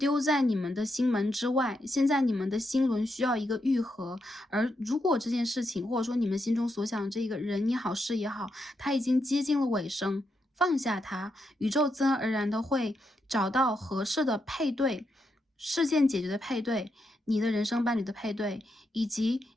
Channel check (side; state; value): both; normal; correlation 0.82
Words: 在你们的心门之外。现在你们的心轮需要一个愈合，而如果这件事情，或者说你们心中所想的这个人也好、事也好，它已经接近了尾声，放下它，宇宙自然而然的会找到合适的配对，事件解决的配对。你的人生伴侣的配对，以及